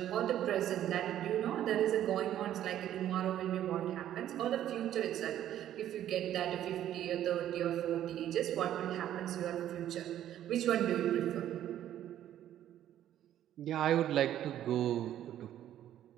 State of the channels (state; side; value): quieter; left; 11.6 dB